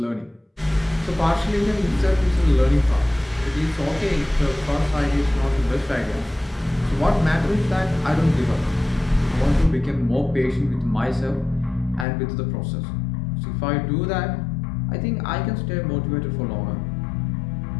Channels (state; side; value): drops out; right; at 12.1 s